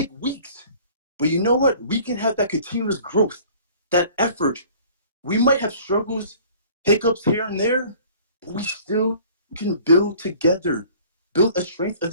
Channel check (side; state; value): both; inverted; correlation -0.50